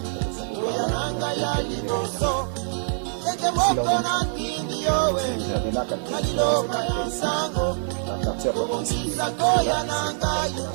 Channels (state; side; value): silent; left; digital silence